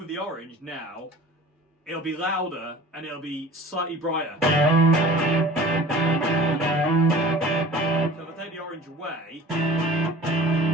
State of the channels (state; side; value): normal; both; correlation 0.43